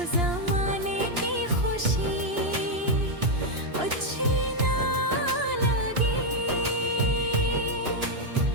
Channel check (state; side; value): late; left; 2.9 ms